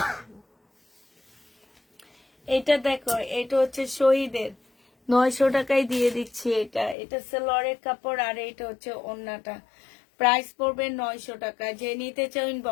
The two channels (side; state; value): right; drops out; at 7.0 s